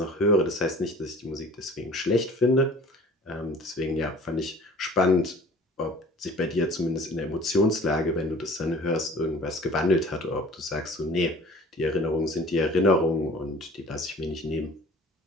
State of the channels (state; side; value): normal; both; correlation 0.47